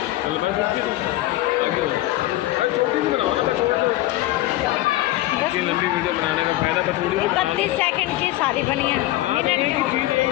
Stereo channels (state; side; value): quieter; right; 16.2 dB